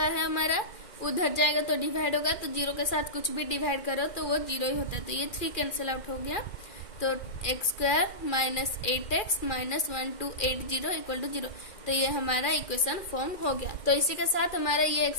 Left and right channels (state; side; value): late; right; 2.4 ms